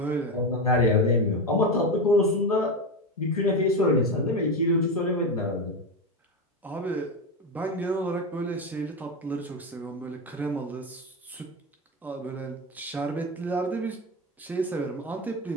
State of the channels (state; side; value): normal; both; correlation 0.15